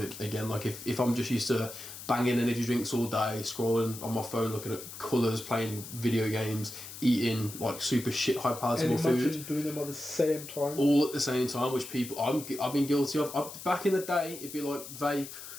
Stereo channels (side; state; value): left; noise; hiss, 12 dB below the sound